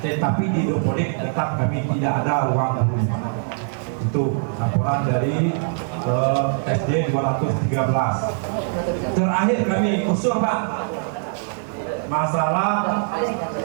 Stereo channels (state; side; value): silent; left; 64 dB below the other